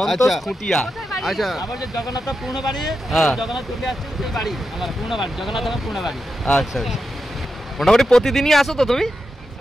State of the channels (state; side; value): normal; both; correlation 0.88